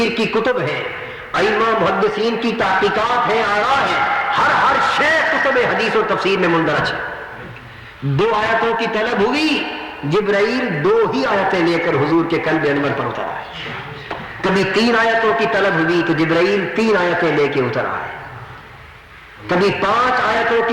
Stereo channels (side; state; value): both; identical; correlation 1.00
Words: کی کتب ہیں، ائمہ محدثین کی تحقیقات ہیں، آراء ہیں، ہر شے کتب حدیث و تفسیر میں مندرج ہے۔ 2 آیتوں کی طلب ہوئی، جبرائیل 2 ہی آیتیں لے کر حضور کے قلب انور پر اتر آئے۔ کبھی 3 آیتوں کی طلب ہوئی تو جبرائیل 3 آیتیں لے کے اتر آئے۔ کبھی 5 آیتوں